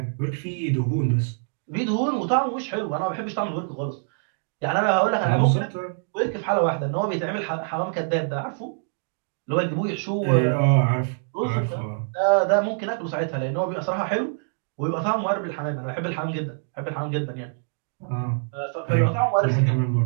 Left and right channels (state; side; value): silent; left; digital silence